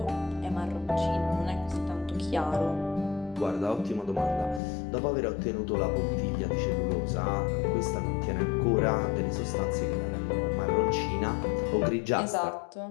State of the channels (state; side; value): drops out; right; at 4.6 s